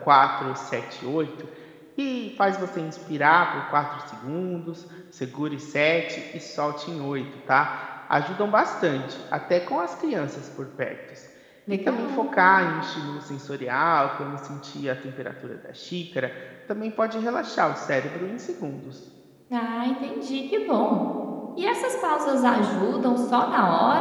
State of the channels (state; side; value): identical; both; correlation 1.00